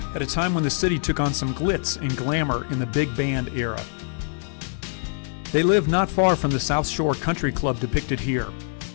at a time when the city took on some glitz and glamour in the big band era. They lived not far from the South Shore Country Club depicted here.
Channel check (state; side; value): silent; right; 61 dB below the other